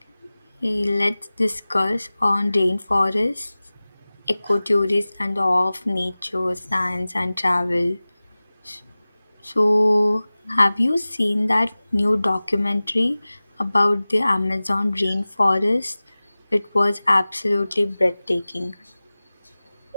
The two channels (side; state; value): both; inverted; correlation -0.98